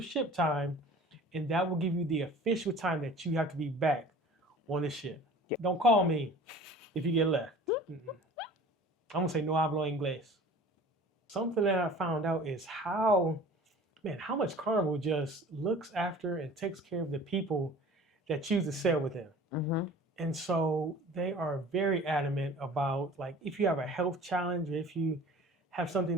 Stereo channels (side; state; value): both; normal; correlation 0.44